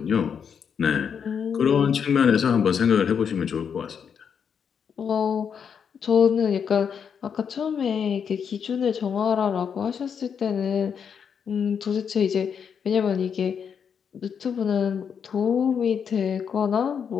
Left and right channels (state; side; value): quieter; right; 7.2 dB